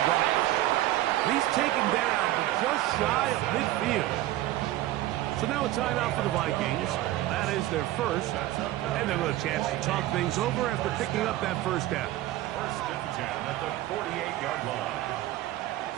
run after. He's taken down, but just shy of midfield. So now a timeout for the Vikings. That is their first. And they'll have a chance to talk things over after picking up that first down. First and 10 at the 48-yard line.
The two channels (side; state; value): left; quieter; 15.4 dB